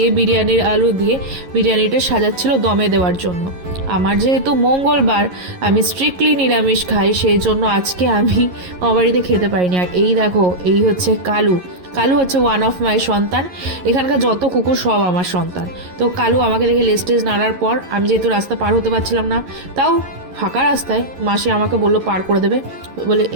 বিরিয়ানির আলু দিয়ে বিরিয়ানিটা সাজাচ্ছিল দমে দেওয়ার জন্য। আমার যেহেতু মঙ্গলবার, আমি স্ট্রিক্টলি নিরামিষ খাই, সেই জন্য আজকে আমি আমার বাড়িতে খেতে পারিনি। আর এই দেখো, এই হচ্ছে কালু। কালু হচ্ছে ওয়ান অফ মাই সন্তান। এখানকার যত কুকুর সব আমার সন্তান। তো কালু আমাকে দেখে লেস্টেজ নাড়ার পর আমি যেহেতু রাস্তা পার হতে পারছিলাম না, তাও ফাঁকা রাস্তায় মাসি আমাকে বললো পার করে দেবে বলে,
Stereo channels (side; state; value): left; late; 11 ms